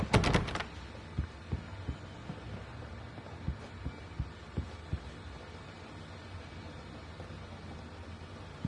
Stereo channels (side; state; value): both; identical; correlation 1.00